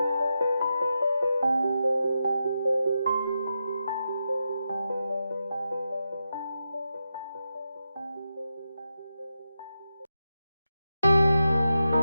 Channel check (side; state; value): both; inverted; correlation -0.88